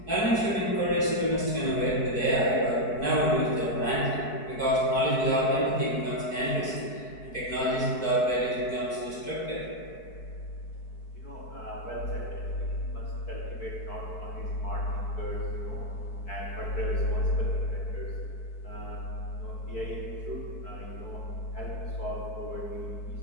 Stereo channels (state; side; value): late; right; 4.6 ms